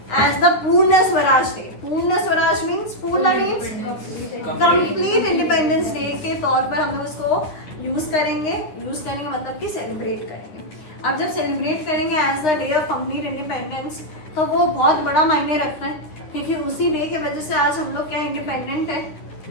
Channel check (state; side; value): late; right; 9.8 ms